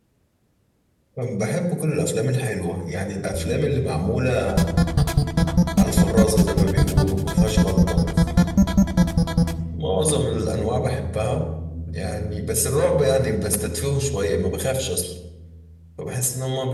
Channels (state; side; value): identical; both; correlation 1.00